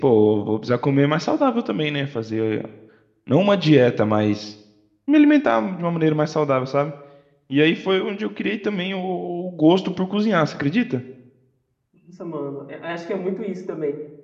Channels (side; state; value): both; identical; correlation 1.00